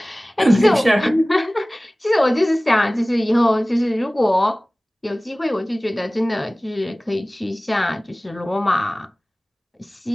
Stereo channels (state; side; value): normal; both; correlation 0.98